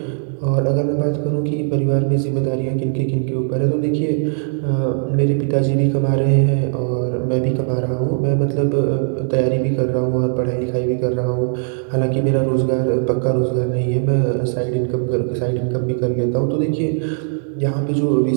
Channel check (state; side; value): silent; left; 67 dB below the other